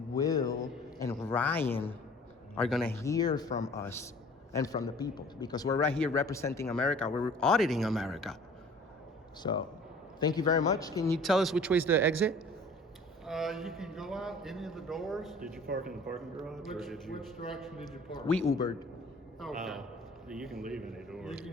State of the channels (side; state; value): both; normal; correlation 0.48